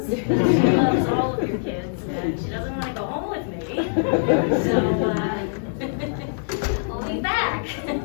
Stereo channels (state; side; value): silent; right; digital silence